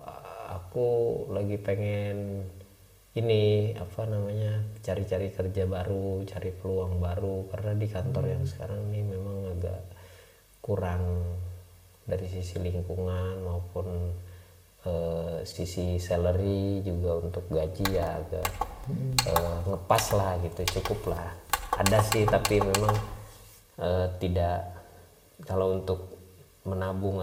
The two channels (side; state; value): both; identical; correlation 1.00